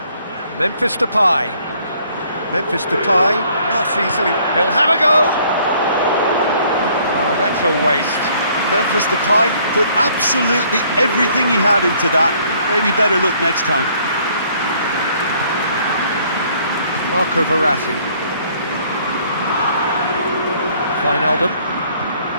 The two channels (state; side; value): inverted; both; correlation -0.62